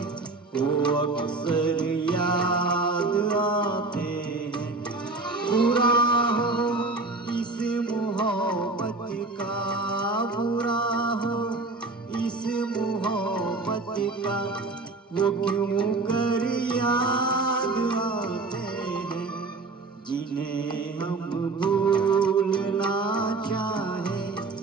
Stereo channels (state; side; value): quieter; left; 3.5 dB